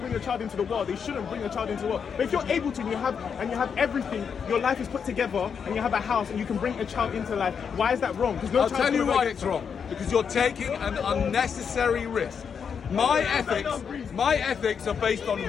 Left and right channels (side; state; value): right; quieter; 6.8 dB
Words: a child into the world, they shouldn't bring a child into the world. But if you're able to, and you have everything, your life is put together, and you have a house, and you can bring a child into life. Why is that wrong? Because I'll tell you why it's wrong. Because you're taking an unnecessary risk. My ethics are based on